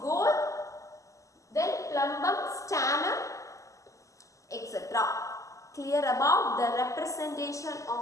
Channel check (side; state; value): right; late; 0.16 ms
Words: then plumbum, stannum, etc. Clear about the representation